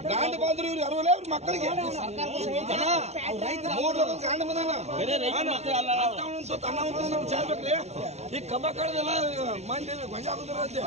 ಗಾಂಡ ಬಂದ್ರು ಇವ್ರು ಅರವಲ್ಲ ಇವ್ರ ಮಕ್ಕಳಿಗೆ 3 ಲೋಕದ ಗಾಂಡ ಬಂದಾನ. ಚಾರ್ಬೇಕ್ರಿ. ಈ ಕಬ್ಬ ಕಳೆದೆಲ್ಲ ಮಂದಿ ಗೊಂಜ ಆಗುದ್ರ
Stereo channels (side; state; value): left; late; 0.32 ms